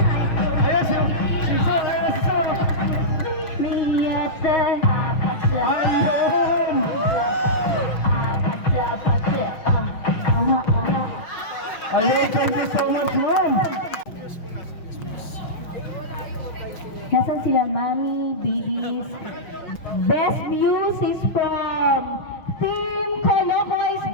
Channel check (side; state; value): right; late; 6.5 ms